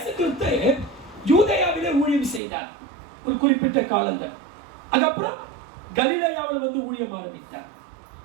கிறிஸ்து யூதேயாவிலே ஊழியம் செய்தார் ஒரு குறிப்பிட்ட காலங்கள். அதுக்கப்புறம் கலிலேயாவில் வந்து ஊழியம் ஆரம்பித்தார்,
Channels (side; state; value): left; drops out; at 2.4 s